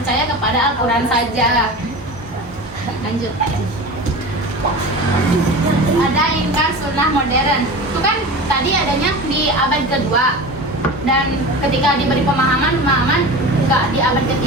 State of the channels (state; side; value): normal; both; correlation 0.32